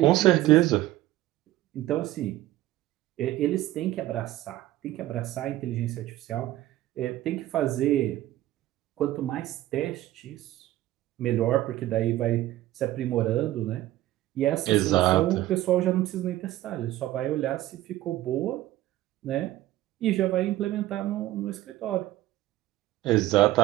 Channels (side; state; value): left; quieter; 15.3 dB